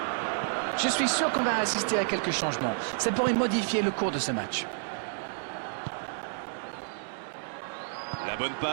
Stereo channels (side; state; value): left; silent; digital silence